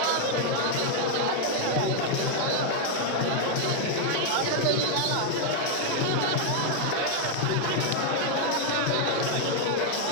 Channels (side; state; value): both; different; correlation 0.00